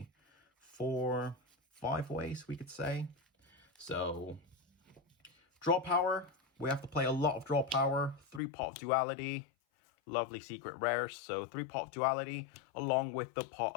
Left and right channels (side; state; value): right; drops out; at 8.4 s